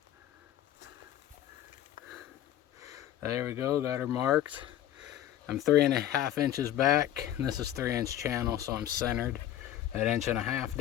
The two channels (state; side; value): quieter; right; 11.9 dB